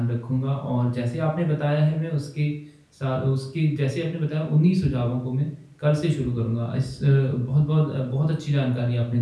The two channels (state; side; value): identical; both; correlation 1.00